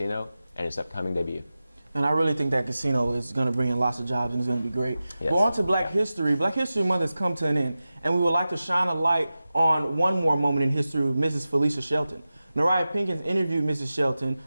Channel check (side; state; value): both; inverted; correlation -0.95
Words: and its upcoming debut. And I really think that casino is going to bring in lots of jobs and it's going to be great. Yes. But on to Black History. Black History Month has come to an end, and we would like to shine a light on one more moment in history with Mrs. Felicia Shelton. Nariah Pinkins interviewed Mrs. Shelton